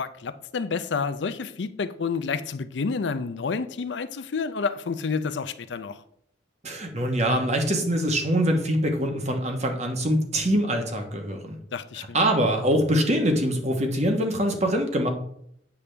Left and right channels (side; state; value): both; normal; correlation 0.49